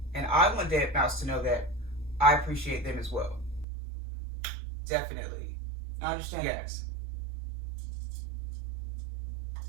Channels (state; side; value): drops out; left; at 3.7 s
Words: And I want Deadmau5 to know that I appreciate them as well. Definitely. I understand. Yes.